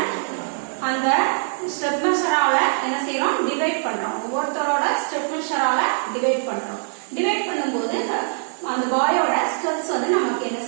அந்த ஸ்டெப் மெஷரால என்ன செய்யறோம், டிவைட் பண்றோம். ஒவ்வொருத்தரோட ஸ்டெப் மெஷரால டிவைட் பண்றோம். டிவைட் பண்ணும்போது அந்த பாயோட ஸ்டெப்ஸ் வந்து நமக்கு என்ன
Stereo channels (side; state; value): left; silent; 64 dB below the other